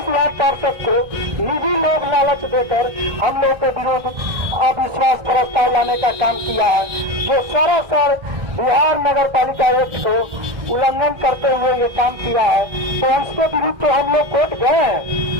लाख पार्षद को निजी लोभ लालच देकर हम लोग के विरुद्ध अविश्वास प्रस्ताव लाने का काम किया है, जो सरासर बिहार नगर पालिका एक्ट को उल्लंघन करते हुए ये काम किया है। तो उसके विरुद्ध तो हम लोग कोर्ट गए हैं,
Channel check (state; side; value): late; left; 1.6 ms